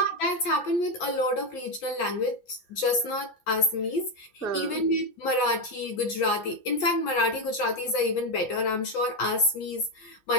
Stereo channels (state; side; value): late; right; 6.8 ms